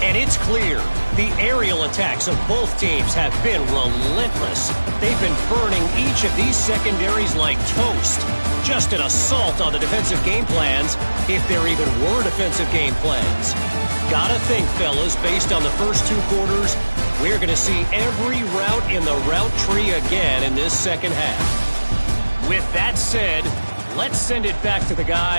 And it's clear, the aerial attacks of both teams have been relentless. They've been burning each of these secondaries like toast. Just an assault on the defensive game plans, if there even were defensive game plans. Gotta think, fellas, based on the first 2 quarters, we're going to see every route in the route tree again in this second half. With that said, let's send it back to the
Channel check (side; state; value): both; inverted; correlation -1.00